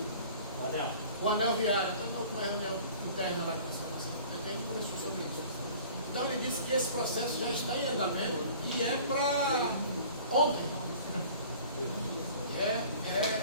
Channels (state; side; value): inverted; both; correlation -0.47